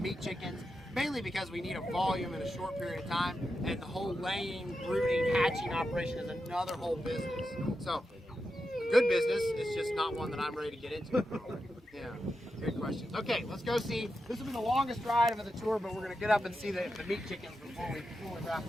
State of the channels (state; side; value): normal; both; correlation 0.88